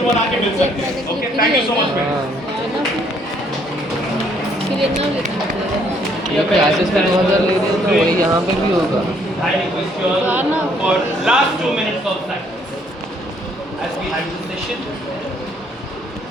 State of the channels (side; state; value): both; normal; correlation 0.66